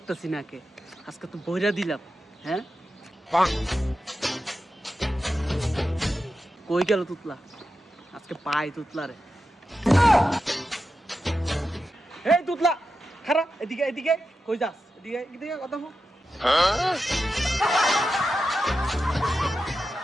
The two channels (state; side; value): normal; both; correlation 0.90